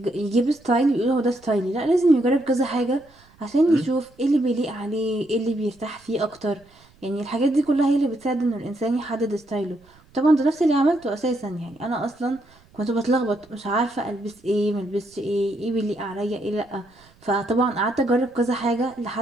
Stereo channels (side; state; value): right; noise; rumble, 29 dB below the sound